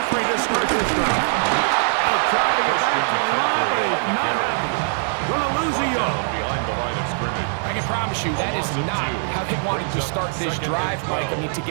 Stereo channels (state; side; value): silent; left; digital silence